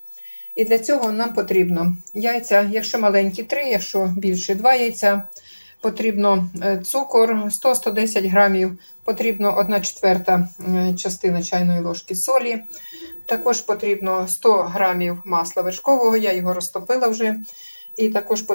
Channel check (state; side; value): inverted; both; correlation -1.00